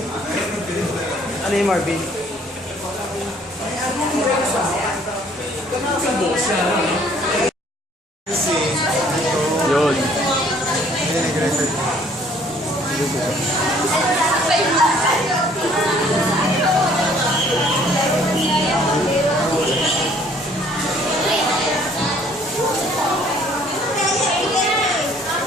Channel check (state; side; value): normal; both; correlation 0.59